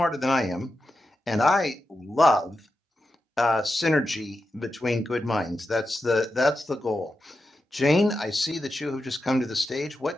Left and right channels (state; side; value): normal; both; correlation 0.89